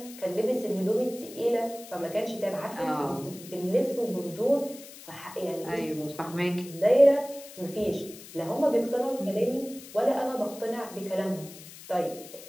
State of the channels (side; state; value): left; noise; hiss, 16 dB below the sound